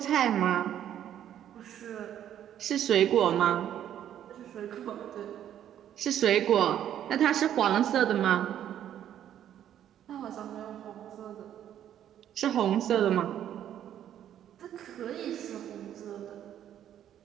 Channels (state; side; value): quieter; left; 10.6 dB